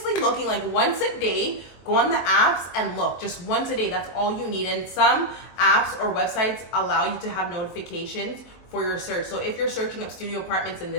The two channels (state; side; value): late; right; 23 ms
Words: looking, like once a day, go on the apps and look just once a day. That's all you need. And some apps or websites allow you to have notifications for your search. So if you're searching up studio apartments in